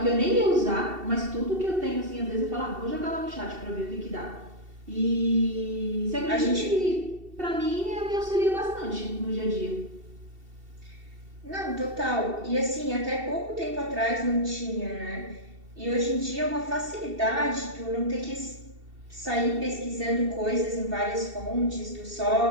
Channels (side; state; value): left; late; 2.7 ms